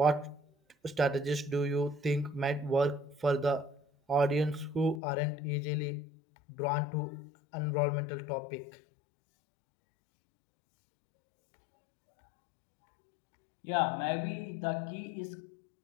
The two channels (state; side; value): drops out; right; at 5.0 s